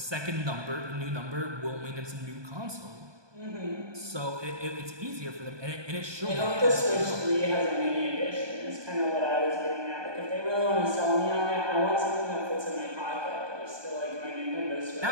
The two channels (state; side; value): late; left; 1.2 ms